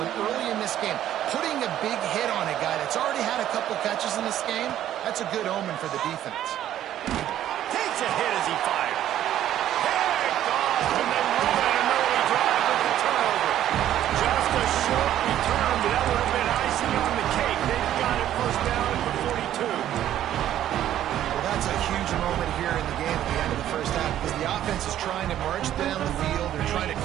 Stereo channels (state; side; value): quieter; left; 11.8 dB